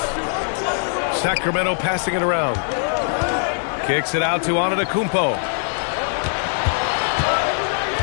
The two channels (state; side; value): silent; right; digital silence